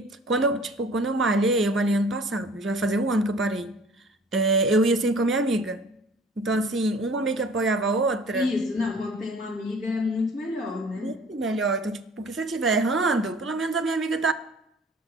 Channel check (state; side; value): normal; both; correlation 0.49